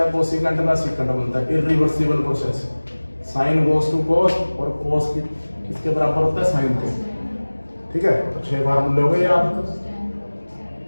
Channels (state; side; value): inverted; both; correlation -1.00